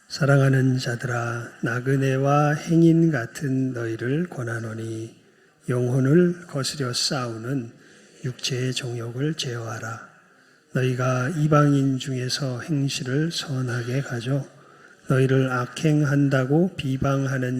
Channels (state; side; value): identical; both; correlation 1.00